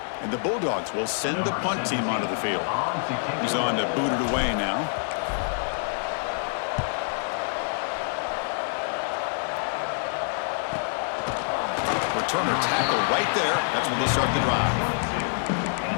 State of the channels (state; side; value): silent; right; 61 dB below the other